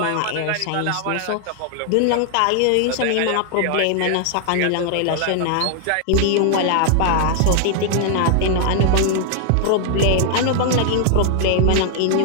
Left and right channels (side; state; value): both; different; correlation 0.00